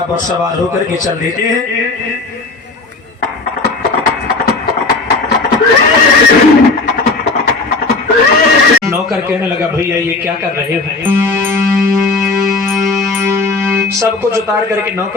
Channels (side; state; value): right; quieter; 3.6 dB